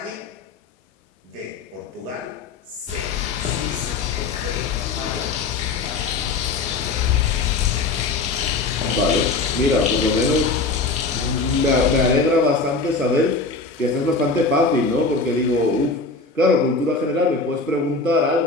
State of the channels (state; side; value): quieter; right; 3.8 dB